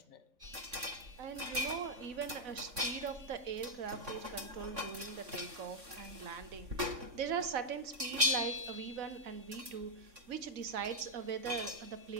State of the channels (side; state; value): left; late; 3.6 ms